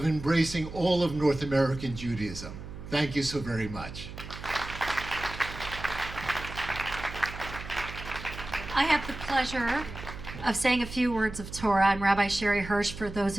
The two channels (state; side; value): noise; right; hum, 11 dB below the sound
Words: embracing all of North American Judaism. Thank you so very much. I have the pleasure of saying a few words of Torah. I'm Rabbi Sherre Hirsch, for those